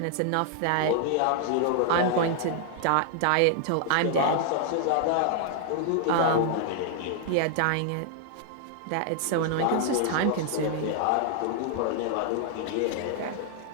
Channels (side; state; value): both; different; correlation 0.00